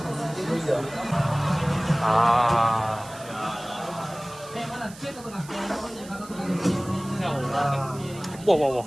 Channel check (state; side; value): noise; right; hiss, 19 dB below the sound